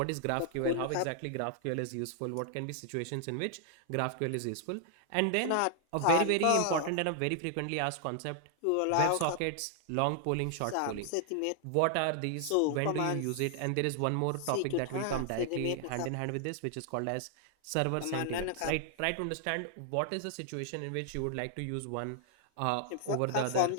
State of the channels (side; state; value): both; different; correlation 0.00